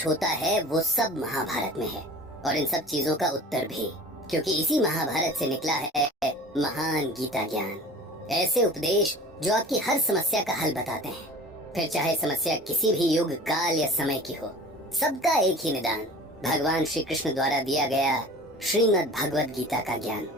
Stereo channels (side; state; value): both; normal; correlation 0.42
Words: होता है वो सब महाभारत में है, और इन सब चीजों का उत्तर भी, क्योंकि इसी महाभारत से निकला है महान गीता ज्ञान। ऐसे उपदेश जो आपकी हर समस्या का हल बताते हैं, फिर चाहे समस्या किसी भी युग काल या समय की हो, सबका एक ही निदान, भगवान श्री कृष्ण द्वारा दिया गया श्रीमद् भगवद गीता का ज्ञान।